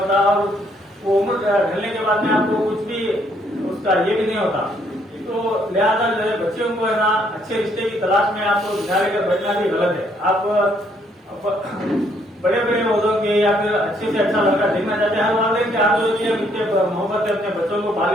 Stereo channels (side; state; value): both; normal; correlation 0.69